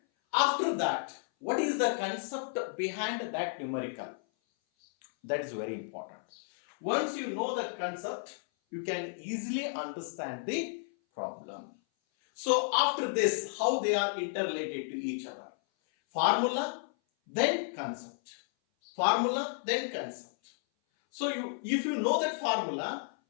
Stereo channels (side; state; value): right; silent; 56 dB below the other